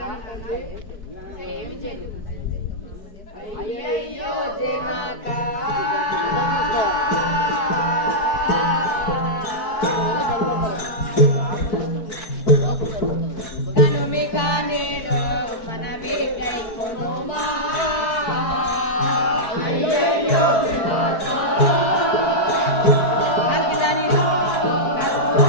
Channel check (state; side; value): late; right; 4.6 ms